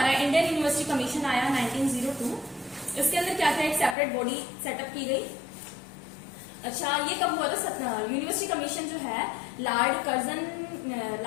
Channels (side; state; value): right; drops out; at 4.0 s